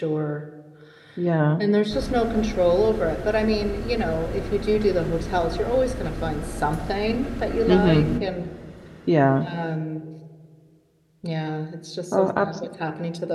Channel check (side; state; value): both; identical; correlation 1.00